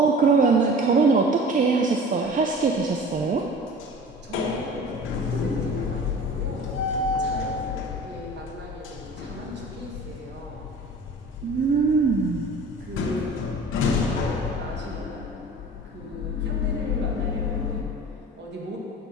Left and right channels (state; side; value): normal; both; correlation 0.41